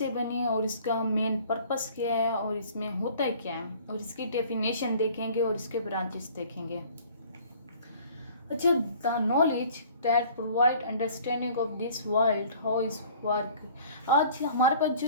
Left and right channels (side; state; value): both; inverted; correlation -0.51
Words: बनी और इसका मेन पर्पस क्या है और इसमें होता है क्या है, और इसकी डेफिनेशन देखेंगे और इसके ब्रांचेस देखेंगे। अच्छा, the knowledge that provide understanding of this world how is work. आज हमारे पास